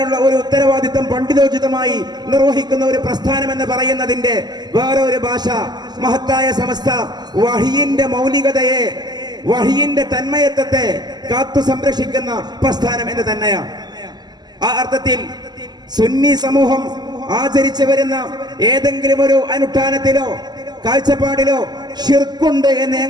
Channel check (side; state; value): left; late; 0.20 ms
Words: ഒരു ഉത്തരവാദിത്തം പണ്ഡിതോചിതമായി നിർവഹിക്കുന്ന ഒരു പ്രസ്ഥാനം എന്ന് പറയുന്നതിന്റെ വേറെ ഒരു ഭാഷ മഹത്തായ സമസ്ത വഹിയിന്റെ മൗലികതയെ, വഹിയിന്റെ തന്മയത്വത്തെ കാത്തു സംരക്ഷിക്കുന്ന പ്രസ്ഥാനം എന്ന് തന്നെയാണ്. ആ അർത്ഥത്തിൽ സുന്നി സമൂഹം ആചരിച്ചു വരുന്ന ഏതെങ്കിലും ഒരു അനുഷ്ഠാനത്തിലോ കാഴ്ചപ്പാടിലോ ഷിർക്കുണ്ട് എന്ന്